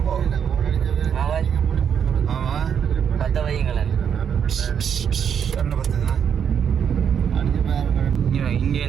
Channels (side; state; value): left; quieter; 7.9 dB